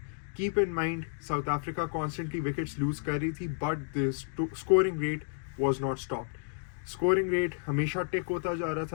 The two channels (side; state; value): right; silent; digital silence